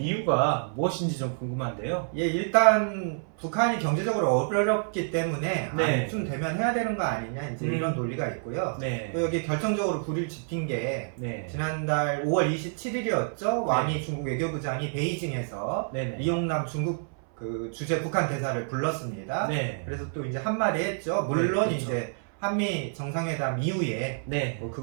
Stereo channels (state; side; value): silent; left; 59 dB below the other